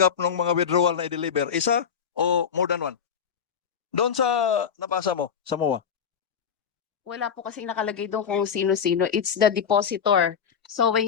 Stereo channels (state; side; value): quieter; right; 7.3 dB